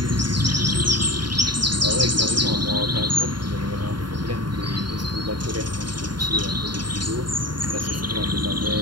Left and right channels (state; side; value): late; left; 0.71 ms